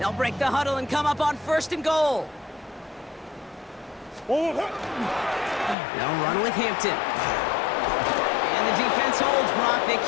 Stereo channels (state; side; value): drops out; right; at 5.8 s